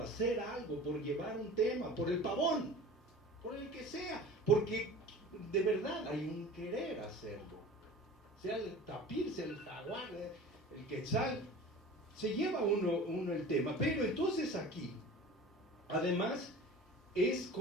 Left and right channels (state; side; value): normal; both; correlation 0.39